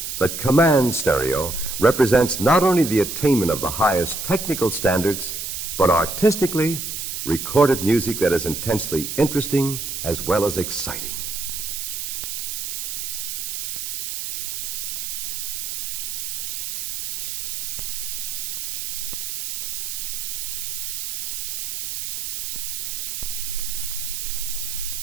that command stereo represents not only the attainment of the highest technical standards, but artistically recorded music that is intensely interesting as well as exciting.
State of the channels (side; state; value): right; noise; hiss, 4 dB below the sound